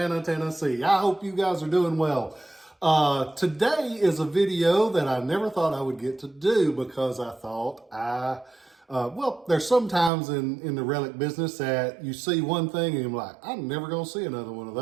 Tennessee. I hope you guys are doing well. Today is a video that I never thought I would get to do because I thought well, there's sometimes in the relic business that you see one thing and you're like, I'm never going to see another one of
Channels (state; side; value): drops out; left; at 10.1 s